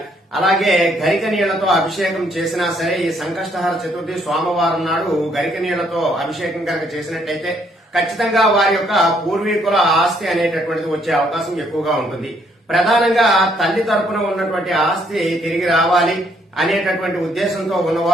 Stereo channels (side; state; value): both; normal; correlation 0.69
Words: అలాగే గరిక నీళ్లతో అభిషేకం చేసినా సరే ఈ సంకష్టహర చతుర్థి సోమవారం నాడు గరిక నీళ్లతో అభిషేకం కనుక చేసినట్లయితే ఖచ్చితంగా వారి యొక్క పూర్వీకుల ఆస్తి అనేటటువంటిది వచ్చే అవకాశం ఎక్కువగా ఉంటుంది. ప్రధానంగా తల్లి తరపున ఉన్నటువంటి ఆస్తి తిరిగి రావాలి అనేటటువంటి ఉద్దేశంతో